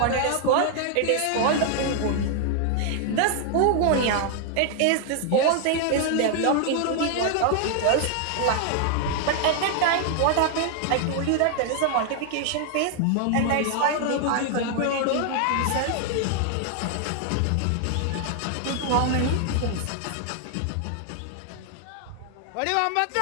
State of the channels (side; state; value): both; different; correlation 0.00